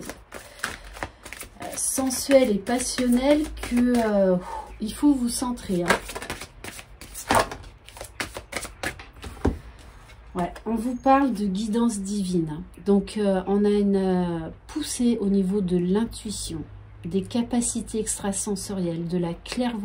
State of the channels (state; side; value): identical; both; correlation 1.00